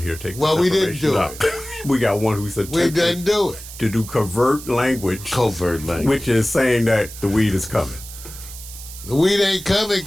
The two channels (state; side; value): noise; right; hiss, 14 dB below the sound